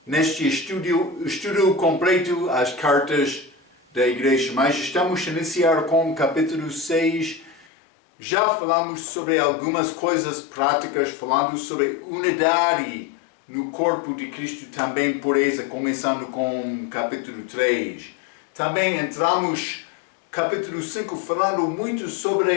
neste estudo completo às cartas da igreja. Mas estamos a iniciar com o capítulo 6. Já falamos sobre algumas coisas práticas, falando sobre unidade no corpo de Cristo, também por essa, começando com o capítulo 3. Também entramos capítulo 5 falando muito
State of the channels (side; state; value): right; drops out; at 7.7 s